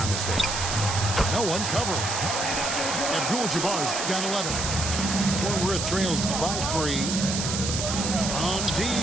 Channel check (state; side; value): noise; right; hiss, 2 dB below the sound